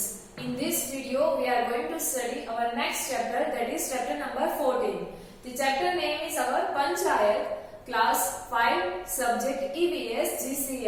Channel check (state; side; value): identical; both; correlation 1.00